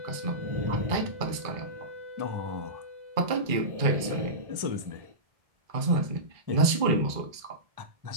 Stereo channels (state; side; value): late; left; 2.3 ms